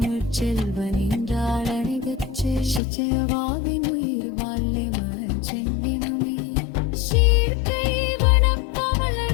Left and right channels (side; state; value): right; drops out; at 2.8 s